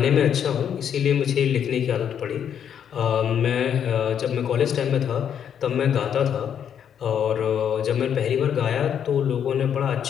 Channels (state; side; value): quieter; right; 8.6 dB